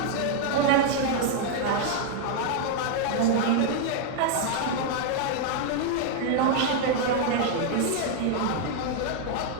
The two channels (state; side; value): different; both; correlation 0.00